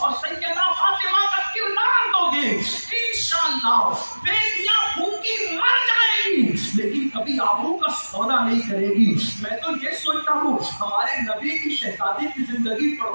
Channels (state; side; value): inverted; both; correlation -1.00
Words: سیدہ فاطمہ کا کردار دو گے، انشاءاللہ بیٹیاں بھوکی مر جائیں گی لیکن کبھی آبرو کا سودا نہیں کرے گی۔ میں تو یہ سوچتا ہوں ہمارے نبی کی شہزادی کی زندگی